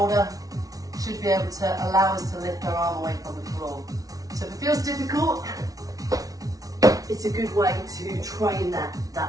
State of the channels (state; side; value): late; left; 0.18 ms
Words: should be able to allow us to lift our arm away from the floor. So if it feels difficult, it's a good way to train